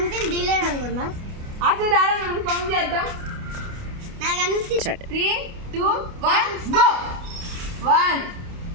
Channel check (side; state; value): left; late; 29 ms